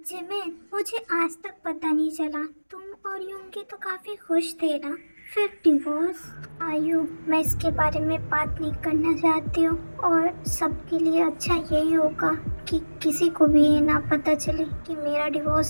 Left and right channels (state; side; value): inverted; both; correlation -1.00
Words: मुझे आज तक पता नहीं चला, तुम और योंगी तो काफ़ी खुश थे ना, फिर डिवोर्स? आयु, मैं इसके बारे में बात नहीं करना चाहती हूँ, और सबके लिए अच्छा यही होगा कि किसी को भी ये ना पता चले कि मेरा